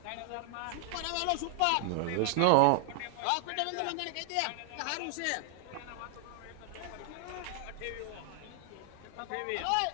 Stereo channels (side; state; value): both; different; correlation 0.00